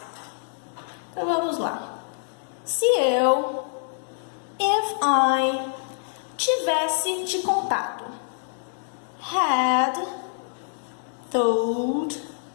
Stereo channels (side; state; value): right; silent; digital silence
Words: Então vamos lá. Se eu, if I, tivesse te contado, had told